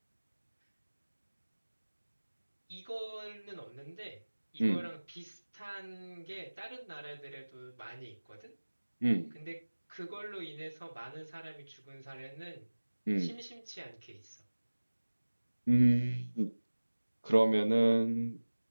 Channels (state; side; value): inverted; both; correlation -1.00